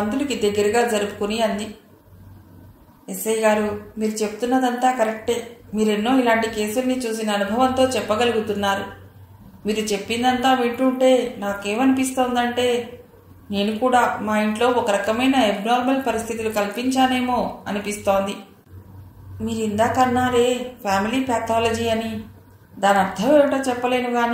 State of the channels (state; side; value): identical; both; correlation 1.00